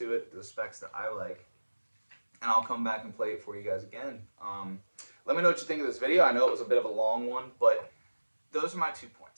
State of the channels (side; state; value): both; inverted; correlation -1.00